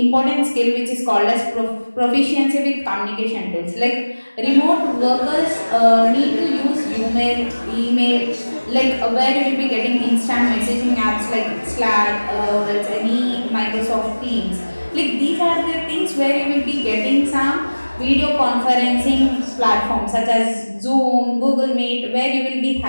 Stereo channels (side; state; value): both; inverted; correlation -1.00